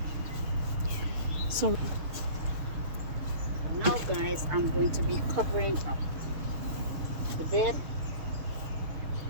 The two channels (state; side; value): late; left; 6.7 ms